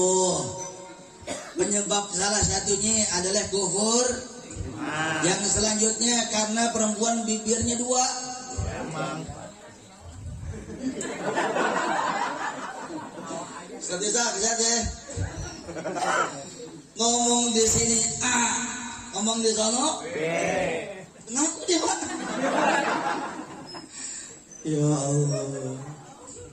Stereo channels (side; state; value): both; identical; correlation 1.00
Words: Penyebab salah satunya adalah kufur. Yang selanjutnya karena perempuan bibirnya 2. Bisa ya. Ngomong di sini A, ngomong di sono B. Ngaku dia, Pak. Ya Allah.